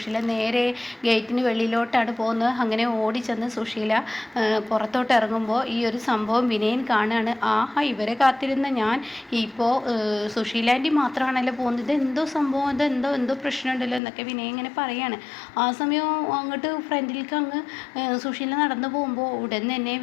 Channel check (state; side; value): drops out; right; at 14.0 s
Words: നേരെ ഗേറ്റിന് വെളിയിലോട്ടാണ് പോകുന്നത്. അങ്ങനെ ഓടിച്ചെന്ന് സുശീല പുറത്തോട്ട് ഇറങ്ങുമ്പോൾ ഈ ഒരു സംഭവം വിനയൻ കാണുകയാണ്. ആഹാ, ഇവരെ കാത്തിരുന്ന ഞാൻ ഇപ്പോൾ സുശീല ആൻറ്റി മാത്രമാണല്ലോ പോകുന്നത്, ഇതെന്തോ സംഭവം, എന്തോ പ്രശ്നമുണ്ടല്ലോ എന്നൊക്കെ വിനയൻ ഇങ്ങനെ പറയാണ്. ആ സമയം അങ്ങോട്ട് ഫ്രണ്ടിലേക്ക് അങ്ങ് സുശീല നടന്നു പോകുമ്പോൾ ഉടൻ തന്നെ